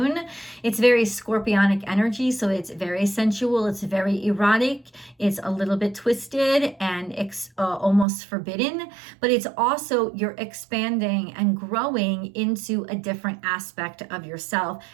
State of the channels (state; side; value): drops out; left; at 8.1 s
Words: It's very scorpionic energy, so it's very sensual. It's very erotic. It's a little bit twisted and almost forbidden, but it's also you're expanding and growing into a different aspect of yourself.